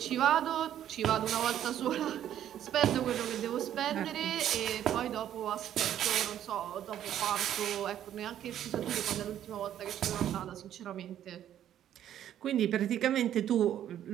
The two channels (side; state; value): left; quieter; 10.9 dB